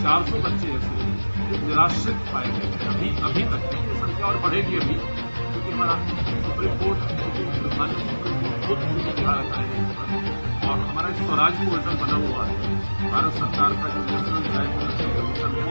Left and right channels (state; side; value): inverted; both; correlation -1.00